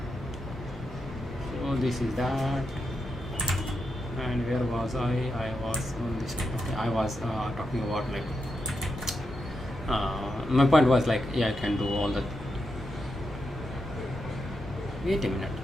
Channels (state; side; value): normal; both; correlation 0.85